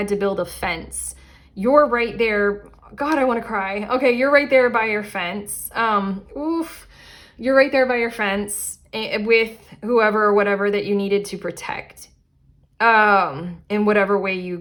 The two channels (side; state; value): both; identical; correlation 1.00